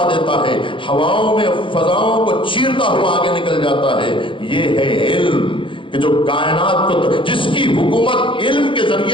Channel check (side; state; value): right; late; 0.25 ms